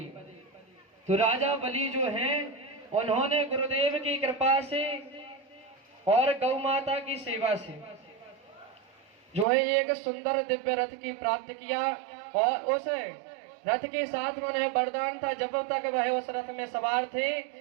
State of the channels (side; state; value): left; drops out; at 9.5 s